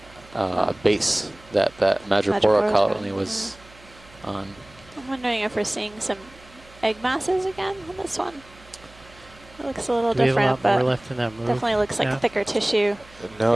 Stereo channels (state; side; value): noise; right; hum, 24 dB below the sound